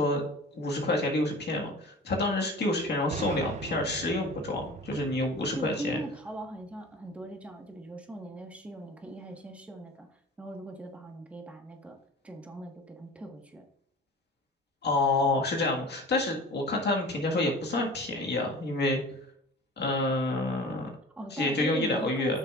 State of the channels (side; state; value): both; normal; correlation 0.40